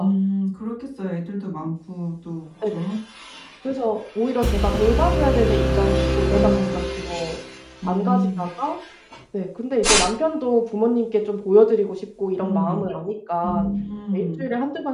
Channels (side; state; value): both; identical; correlation 1.00